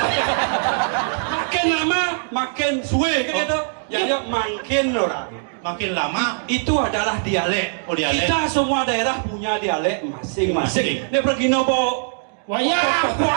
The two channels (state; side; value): silent; left; digital silence